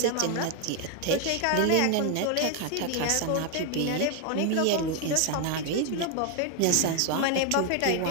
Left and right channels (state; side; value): different; both; correlation 0.01